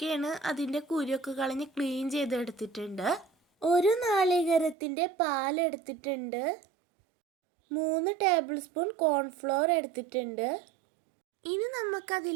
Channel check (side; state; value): left; drops out; at 4.8 s